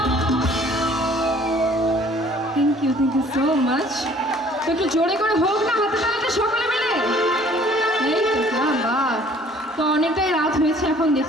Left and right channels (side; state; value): both; normal; correlation 0.55